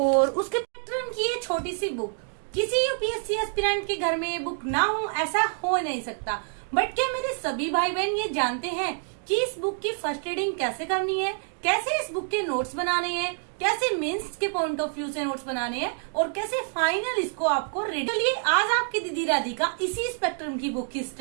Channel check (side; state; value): left; silent; 60 dB below the other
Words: उसके स्पेक्ट्रम की ये छोटी सी बुक। किसी यूपीएससी एस्पिरेंट के घर में ये बुक ना हो ऐसा हो नहीं सकता। बट क्या मेरे सभी भाई बहन ये जानते हैं कि इस बुक की फर्स्ट रीडिंग कैसे करनी है, कैसे इस बुक के नोट्स बनाने हैं, कैसे मेंस के पॉइंट ऑफ व्यू से नोट्स बनाने हैं और कैसे फाइनल इसको आपको रीड। चलिए आज आपकी दीदी राधिका इसी स्पेक्ट्रम की बुक की